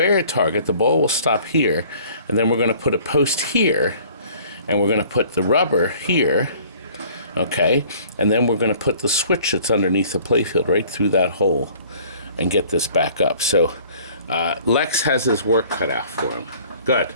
the ball will stop here, and then we're going to put a post here, and we're going to put the rubber here, okay? And then we're going to put the switch that's underneath the playfield right through that hole and get this back up. So Lex has his work cut out for him. Good.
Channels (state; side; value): inverted; both; correlation -0.52